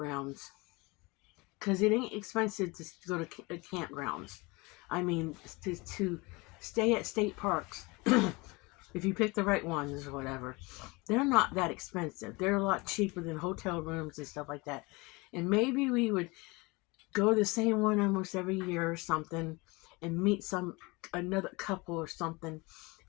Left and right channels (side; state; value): right; quieter; 25.2 dB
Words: Because it ain't expensive to go to campgrounds. I mean, to stay at state parks, if you pick the right ones or whatever, they're not that expensive. They're a lot cheaper than hotel rooms and stuff like that. And maybe we would go to the same one almost every year or something and meet another couple or something,